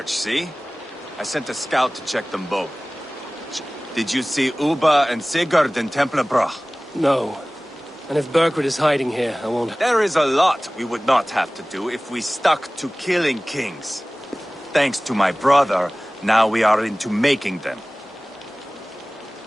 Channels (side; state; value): both; normal; correlation 0.98